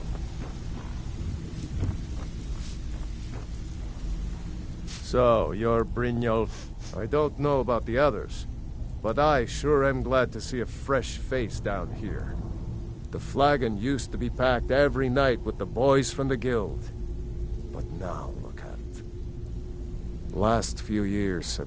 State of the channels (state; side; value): identical; both; correlation 1.00